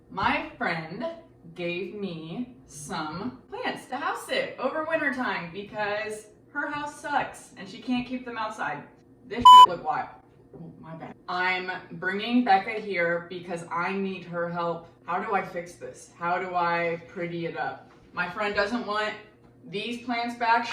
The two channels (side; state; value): both; identical; correlation 1.00